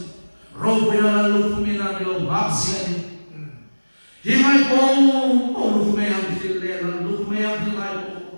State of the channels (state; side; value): inverted; both; correlation -1.00